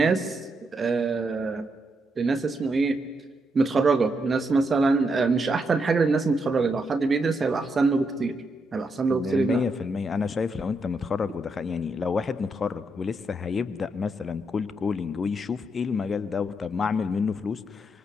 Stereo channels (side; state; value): both; normal; correlation 0.80